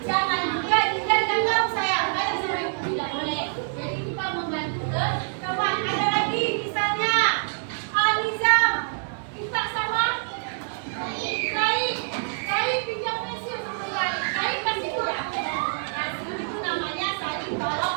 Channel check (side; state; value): left; silent; 61 dB below the other